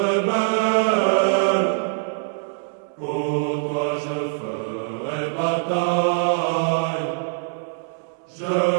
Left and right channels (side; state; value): left; silent; 63 dB below the other